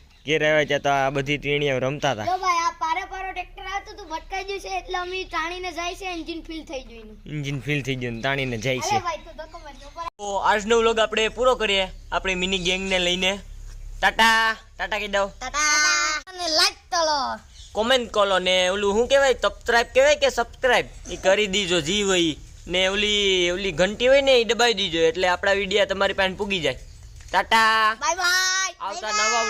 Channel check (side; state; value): both; identical; correlation 1.00